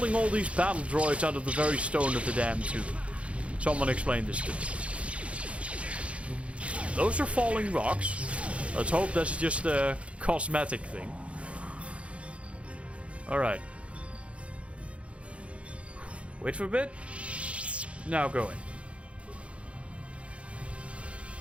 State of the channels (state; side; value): late; left; 0.062 ms